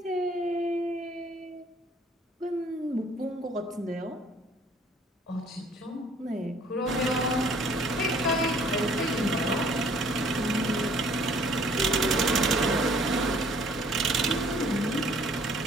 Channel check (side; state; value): both; normal; correlation 0.58